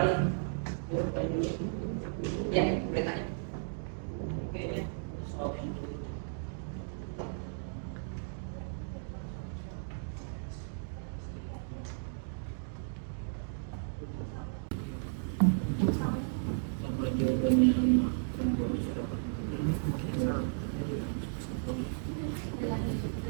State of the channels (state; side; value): silent; left; digital silence